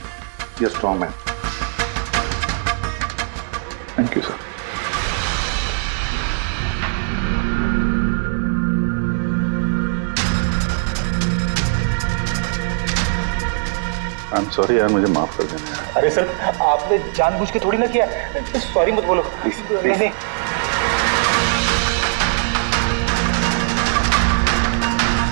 you strong man. Thank you sir. I am sorry यार, मुझे माफ कर देना। अरे सर, आपने जानबूझ के थोड़ी ना किया। सॉरी मत बोलो प्लीज। नहीं।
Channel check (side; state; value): left; silent; digital silence